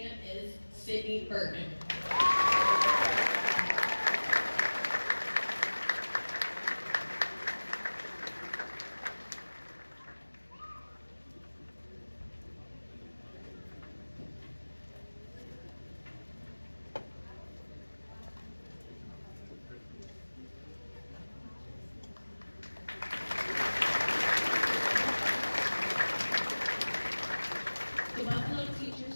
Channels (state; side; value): inverted; both; correlation -1.00